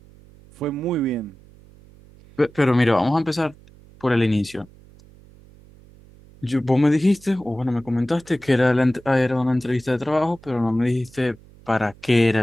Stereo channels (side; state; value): right; noise; hum, 25 dB below the sound